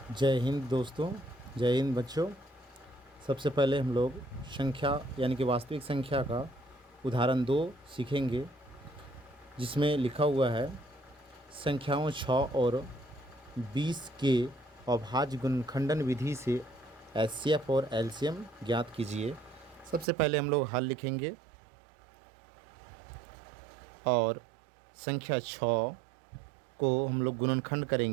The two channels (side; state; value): left; drops out; at 20.1 s